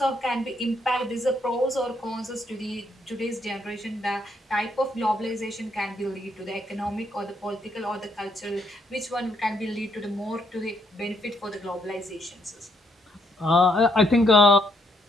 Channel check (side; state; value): both; normal; correlation 0.74